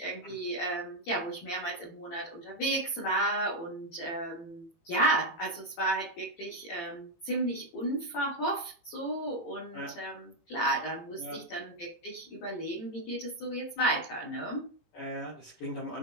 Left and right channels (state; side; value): late; right; 18 ms